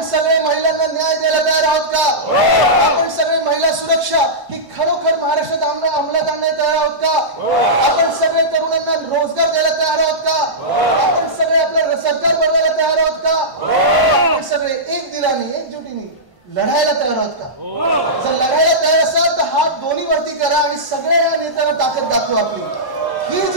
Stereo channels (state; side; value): late; left; 1.1 ms